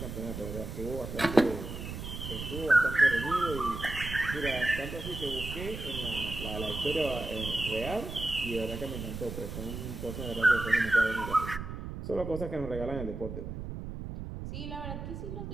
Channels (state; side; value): noise; right; rumble, 7 dB below the sound